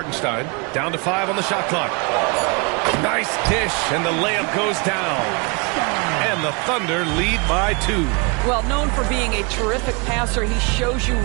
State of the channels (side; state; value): left; quieter; 31.1 dB